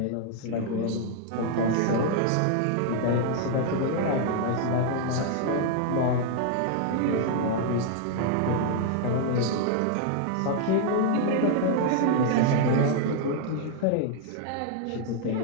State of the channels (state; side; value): different; both; correlation 0.00